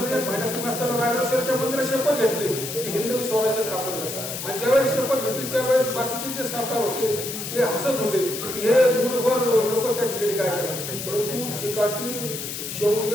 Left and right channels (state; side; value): noise; left; hiss, 6 dB below the sound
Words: महिन्यात असताना रायगड मंदिरात शपथ घेतली की हिंदवी स्वराज्य स्थापन करायचं. आणि ज्यावेळेस शपथ घेतली त्यावेळेस बाकीचे जे सरकार होते ते हसत होते की हे मूठभर लोक त्या ठिकाणी काय करतात. परंतु चिकाटी,